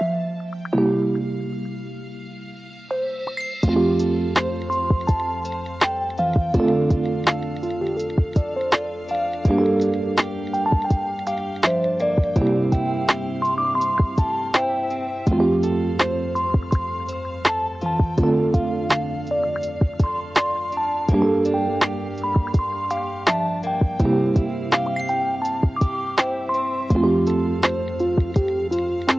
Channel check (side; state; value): both; normal; correlation 0.97